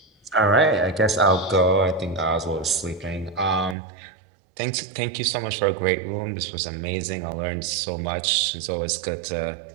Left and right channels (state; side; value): drops out; left; at 3.8 s